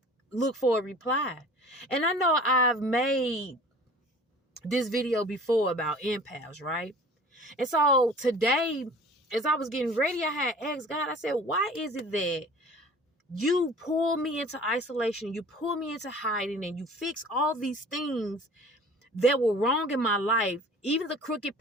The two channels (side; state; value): both; normal; correlation 0.45